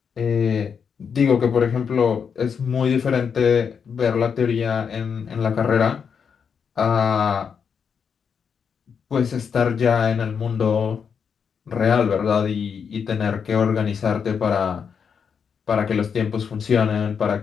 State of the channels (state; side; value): quieter; right; 6.7 dB